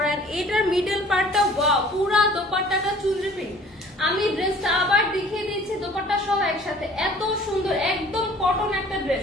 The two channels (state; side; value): normal; both; correlation 0.51